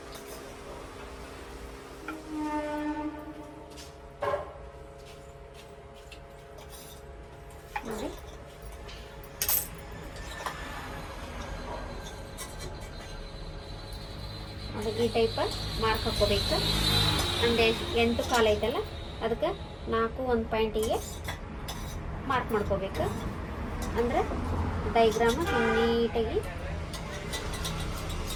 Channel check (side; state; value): both; identical; correlation 1.00